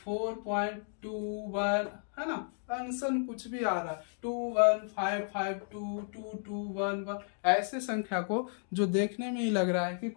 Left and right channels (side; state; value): right; silent; digital silence